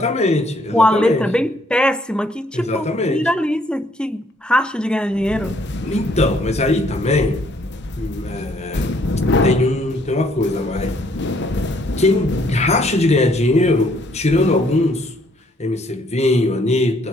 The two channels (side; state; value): both; normal; correlation 0.66